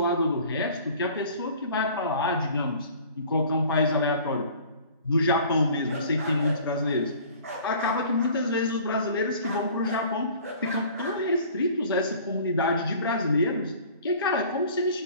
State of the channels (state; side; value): inverted; both; correlation -0.48